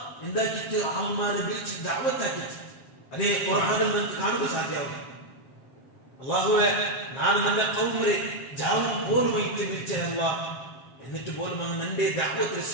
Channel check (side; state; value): right; late; 7.5 ms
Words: എന്താക്കിയിട്ട് ആൾമാരെ വിളിച്ച് ദഅവത്താക്കിയിട്ട് അതേ ഖുർആനിൽ നമുക്ക് കാണുക സാധ്യമാവും അല്ലാഹുവേ ഞാൻ എൻ്റെ ഖൗമിനെ ജാവും പോലുമായിട്ട് വിളിച്ച അല്ലാഹ് എന്നിട്ട് പോലും അവൻ എന്റെ ദഅവത്ത്